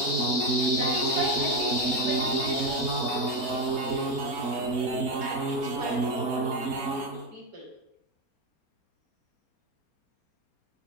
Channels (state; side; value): late; right; 4.3 ms